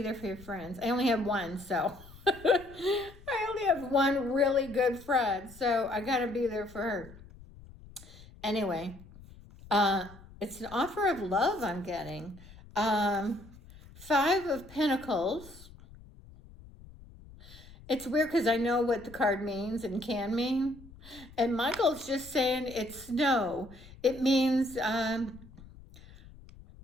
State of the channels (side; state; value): left; noise; rumble, 20 dB below the sound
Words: for your friends. I only have one, so I only have one really good friend, so I gotta be there for her. Anyway, it's an offer of love I'm getting. 5 of Pentacles. It's weird because I know what the card means and can mean. And Michael's just saying it's snow. It means, oh,